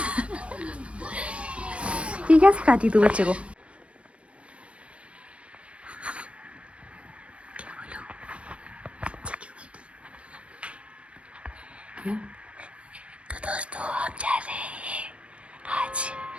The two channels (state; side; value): late; left; 0.061 ms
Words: ये क्या सिखाती तू बच्चे को? तो दोस्तों हम जा रहे हैं आज